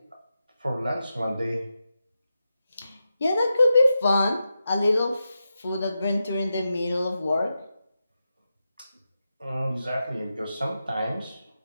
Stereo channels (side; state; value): both; inverted; correlation -0.89